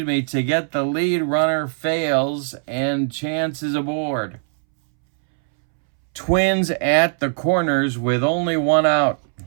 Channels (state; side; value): silent; left; 65 dB below the other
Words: get the lead runner fails, and Chance is aboard. Twins at the corners with only one out.